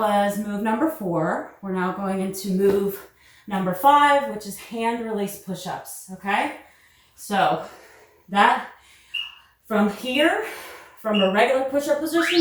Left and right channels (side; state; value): both; identical; correlation 1.00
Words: move number 4. We're now going into move number 5, which is hand release push-ups, okay? So that, from here, from a regular push-up position,